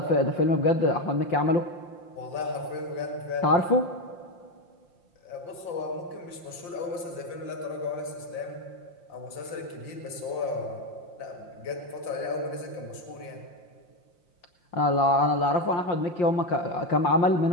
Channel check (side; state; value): right; late; 5.7 ms